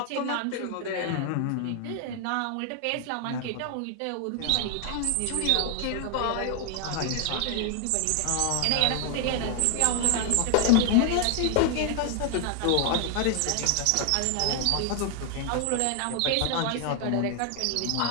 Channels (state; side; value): different; both; correlation 0.00